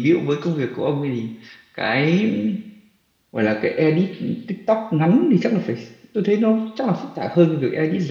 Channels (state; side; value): identical; both; correlation 1.00